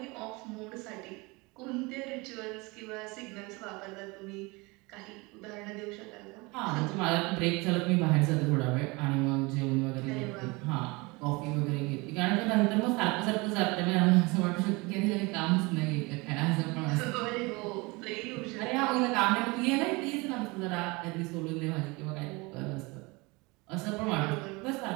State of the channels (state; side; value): quieter; left; 25.5 dB